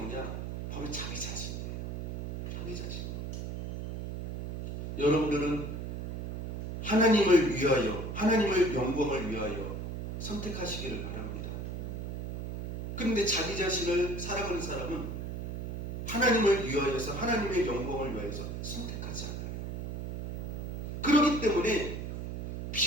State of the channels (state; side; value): noise; right; hum, 5 dB below the sound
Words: 바로 자기 자신이에요. 자기 자신. 여러분들은 하나님을 위하여, 하나님의 영광을 위하여 선택하시기를 바랍니다. 그런데 자기 자신을 살아가는 사람은 하나님을 위하여서, 하나님의 영광을 위하여서 선택하지 않아요. 그렇기 때문에